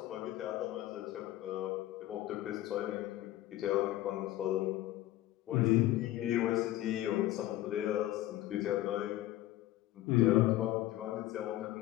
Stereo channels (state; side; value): quieter; right; 15.2 dB